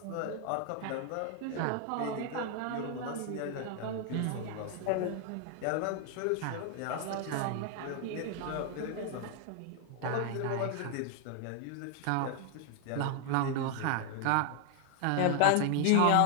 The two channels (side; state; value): both; different; correlation 0.00